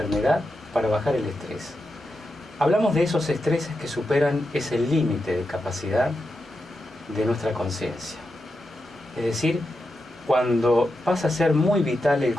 para bajar el estrés. Hablamos de esos estreses que superan ese límite de capacidad de nuestra conciencia. Es decir, cuando pasa a ser muy vital el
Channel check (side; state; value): both; normal; correlation 0.88